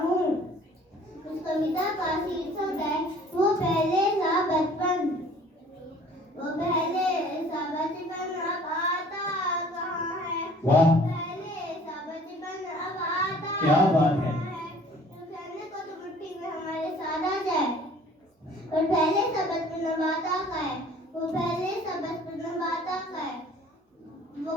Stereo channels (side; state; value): both; normal; correlation 0.52